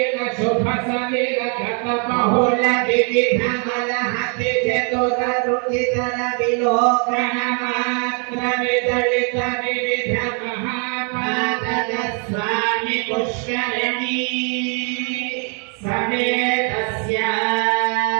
శుభ సలిల గత బహుళ వివిధ మలహతి చతుర రుచితర విలోకన మాత్ర విదళిత వివిధ మహాపాదక స్వామి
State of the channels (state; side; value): quieter; left; 38.5 dB